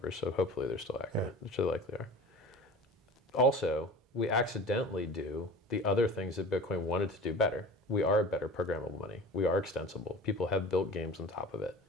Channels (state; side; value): normal; both; correlation 0.38